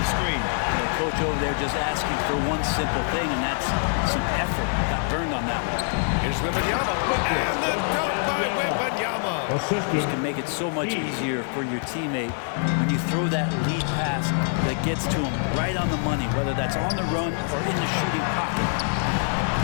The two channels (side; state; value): right; silent; 62 dB below the other